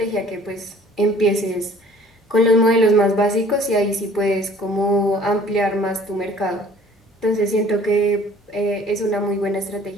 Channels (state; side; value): normal; both; correlation 0.53